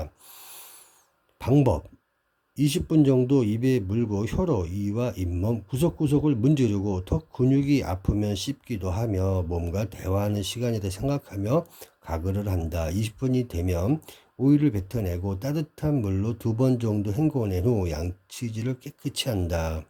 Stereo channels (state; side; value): identical; both; correlation 1.00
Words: 방법: 20분 정도 입에 물고 혀로 이와 잇몸 구석구석을 문지르고 턱 근육이 아프면 씹기도 하며 몸과 대화하는 시간이라 생각하며 가글을 한다. 20분이 되면 오일을 뱉어내고 따뜻한 물로 2번 정도 헹궈낸 후 양치질을 깨끗이 한다.